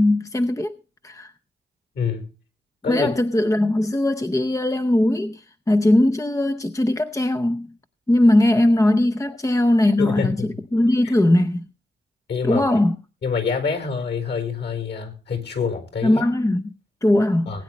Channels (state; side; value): normal; both; correlation 0.92